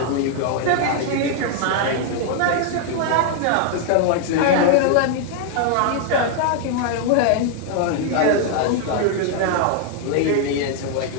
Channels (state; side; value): different; both; correlation 0.00